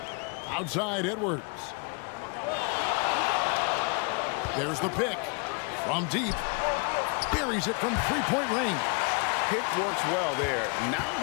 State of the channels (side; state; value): right; quieter; 34.6 dB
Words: Outside Edwards. There's the pick from deep. Buries it from three-point range. Pick works well there. Not